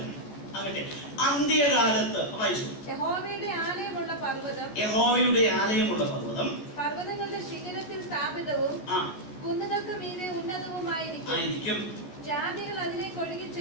ആകട്ടെ, അന്ത്യകാലത്ത് വായിച്ചു. യഹോവയുടെ ആലയമുള്ള പർവ്വതം പർവ്വതങ്ങളുടെ ശിഖരത്തിൽ സ്ഥാപിതവും കുന്നുകൾക്ക് മീതെ ഉന്നതവുമായിരിക്കും. ജാതികൾ അതിലേക്ക് ഒഴുകി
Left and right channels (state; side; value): late; right; 14 ms